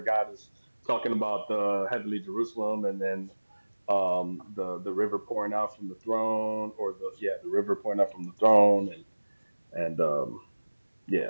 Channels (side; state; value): both; inverted; correlation -1.00